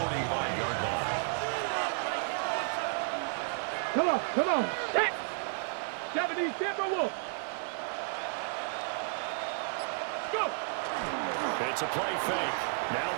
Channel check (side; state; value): left; silent; 56 dB below the other